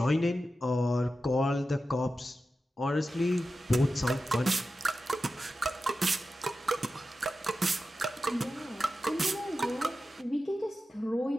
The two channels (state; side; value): normal; both; correlation 0.92